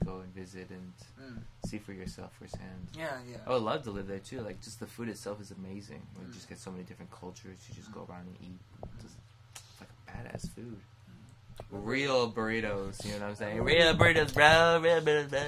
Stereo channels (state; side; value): identical; both; correlation 1.00